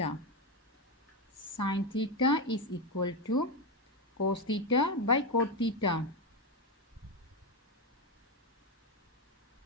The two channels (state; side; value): normal; both; correlation 0.10